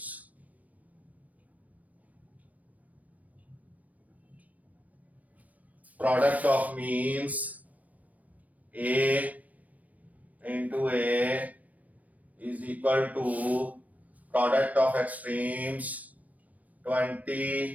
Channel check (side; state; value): left; late; 0.072 ms